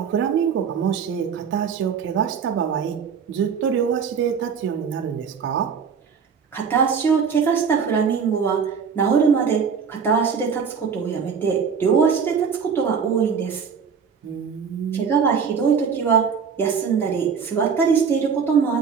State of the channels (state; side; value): quieter; left; 6.4 dB